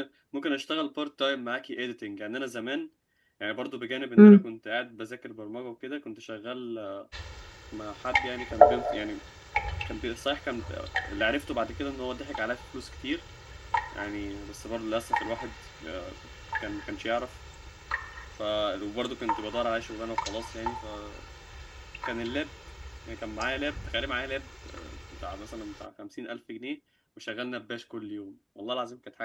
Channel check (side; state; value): both; identical; correlation 1.00